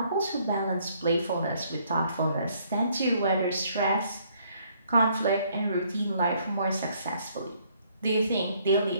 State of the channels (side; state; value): both; inverted; correlation -0.66